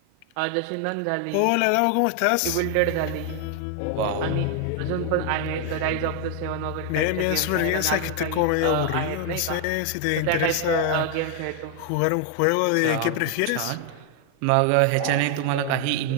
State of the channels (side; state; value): both; different; correlation 0.00